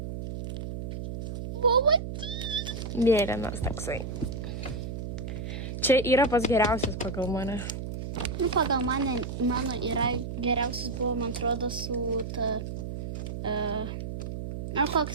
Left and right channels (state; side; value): noise; right; hum, 6 dB below the sound